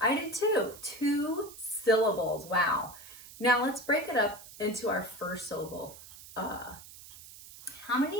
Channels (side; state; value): right; noise; hiss, 17 dB below the sound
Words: I did too. 2 syllables. Wow. Now let's break it up into our first syllable. How